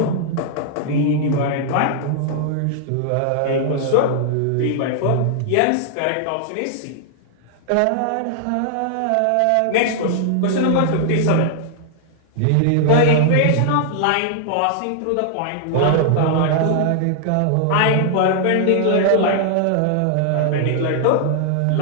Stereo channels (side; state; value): both; different; correlation -0.01